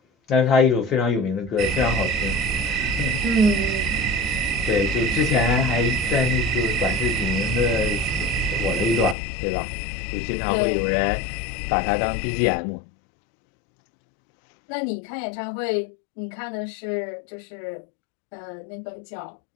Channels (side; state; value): right; drops out; at 9.2 s